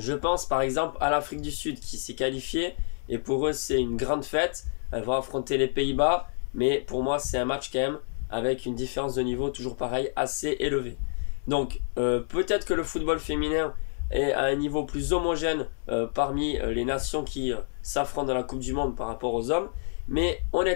pense par exemple à l'Afrique du Sud qui s'est qualifiée, et pour eux c'est une grande fête. Elles vont affronter les Pays-Bas, mais pour moi c'est un match quand même avec une différence de niveau toujours pareil assez élevée. Donc peut-être que le football féminin est à un niveau plus homogène parmi les nations qui s'affrontent dans la Coupe du Monde par rapport aux hommes, mais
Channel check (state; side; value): silent; right; digital silence